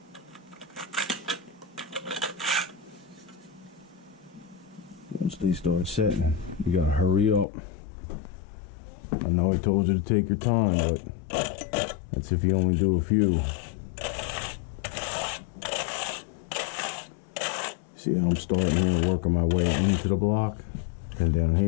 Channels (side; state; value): right; drops out; at 7.5 s